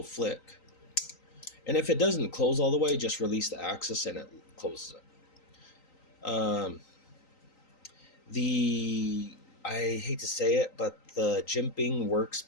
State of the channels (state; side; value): late; right; 3.9 ms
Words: flick. And if it doesn't close all the way, just release the axis and it closes it. I hate to say it, but the jimping works